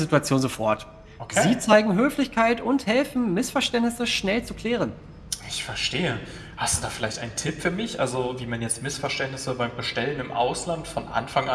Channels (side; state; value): both; identical; correlation 1.00